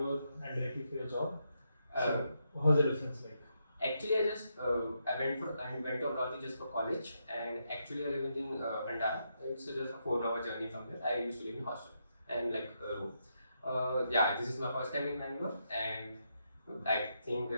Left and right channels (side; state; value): both; inverted; correlation -0.81